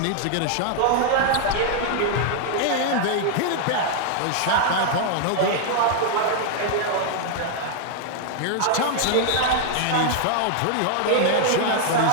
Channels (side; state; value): both; different; correlation 0.00